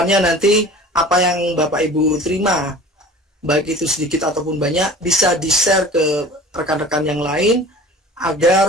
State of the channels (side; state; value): both; normal; correlation 0.42